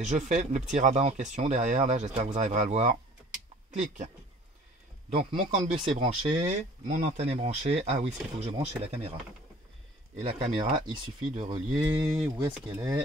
je fais le petit rabat en question derrière, là, j'espère que vous arriverez à le voir. Clic. Donc mon CAN bus est branché, mon antenne est branchée. Ah oui, ce qu'il faut que je branche, c'est la caméra. Et la caméra, il suffit de relier. Où est-ce qu'elle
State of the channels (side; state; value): both; normal; correlation 0.50